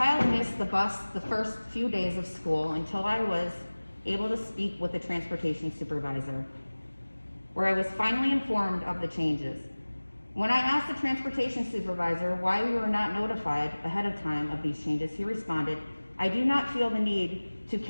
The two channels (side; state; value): both; inverted; correlation -1.00